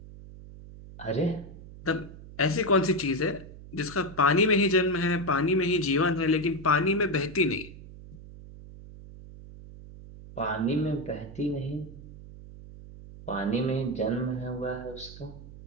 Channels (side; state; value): right; noise; hum, 16 dB below the sound